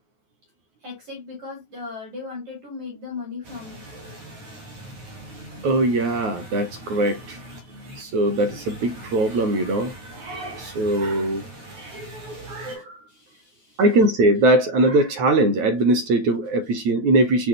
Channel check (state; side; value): late; left; 9.3 ms